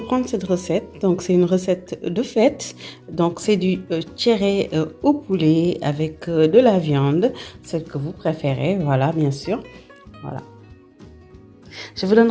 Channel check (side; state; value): both; identical; correlation 1.00